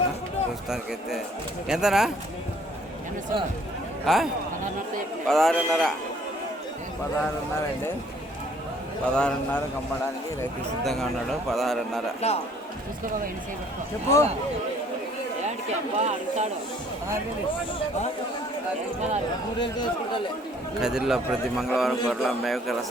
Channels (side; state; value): both; normal; correlation 0.59